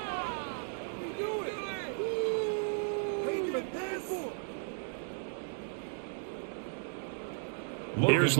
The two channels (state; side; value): silent; left; digital silence